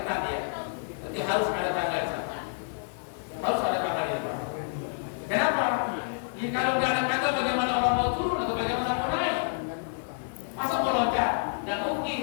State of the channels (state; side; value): silent; right; digital silence